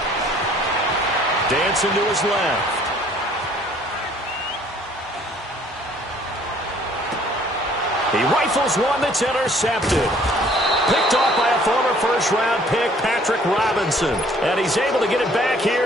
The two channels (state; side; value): normal; both; correlation 0.58